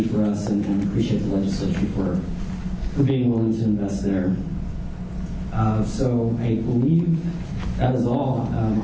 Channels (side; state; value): both; identical; correlation 1.00